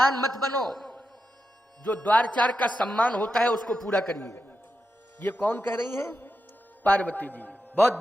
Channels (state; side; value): normal; both; correlation 0.89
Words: मत बनो, जो द्वारचार का सम्मान होता है उसको पूरा करिए। ये कौन कह रही हैं? पार्वती जी। बहुत